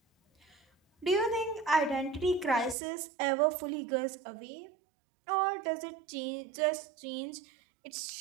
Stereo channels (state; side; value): drops out; left; at 2.8 s